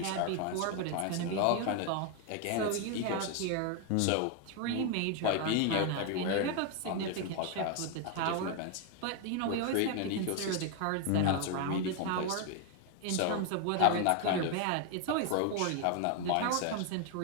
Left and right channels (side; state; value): both; different; correlation 0.01